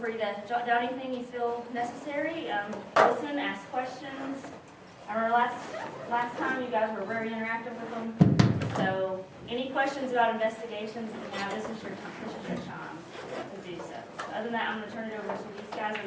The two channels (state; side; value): identical; both; correlation 1.00